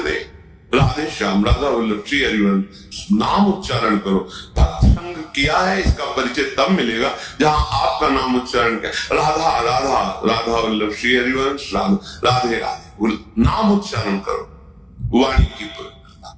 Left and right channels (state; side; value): identical; both; correlation 1.00